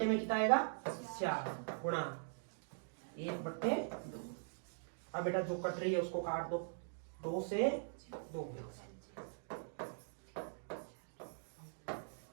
में कितना आएगा 4 गुणा 1/2। अब बेटा जो कट रही है उसको काट दो, 2 से 2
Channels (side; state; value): left; silent; digital silence